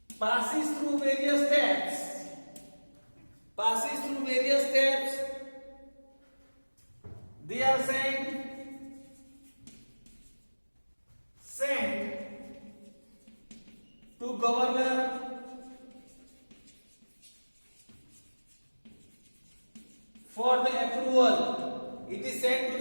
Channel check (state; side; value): inverted; both; correlation -1.00